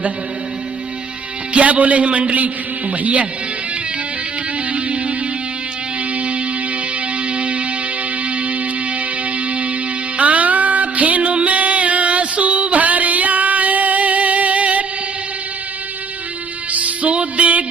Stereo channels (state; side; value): quieter; left; 5.1 dB